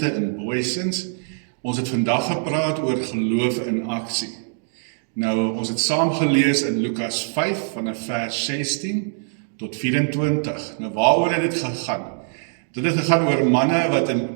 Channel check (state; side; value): silent; left; digital silence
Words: in Booysens. Ons het vandag gepraat oor geloof in aksie. Nou, ons het saam gelees in Lukas 5 vanaf vers 16 tot 24. Nou, waaroor het dit gegaan? Dit het gegaan oor manne wat